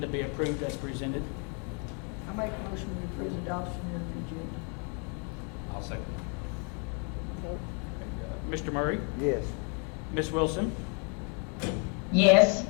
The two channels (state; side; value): quieter; right; 38.4 dB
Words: be approved as presented. I make a motion to approve adoption of the agenda. I'll second. Mr. Murray. Yes. Ms. Wilson. Yes.